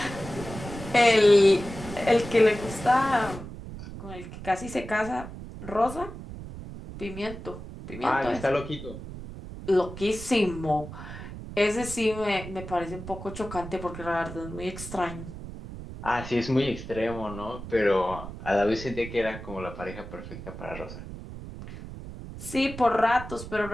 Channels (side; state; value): right; noise; rumble, 11 dB below the sound